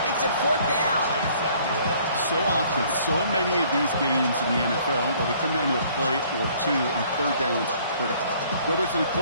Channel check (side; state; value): both; inverted; correlation -0.58